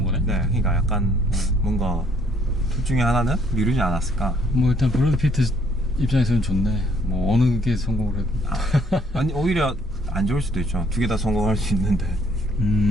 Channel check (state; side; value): normal; both; correlation 0.64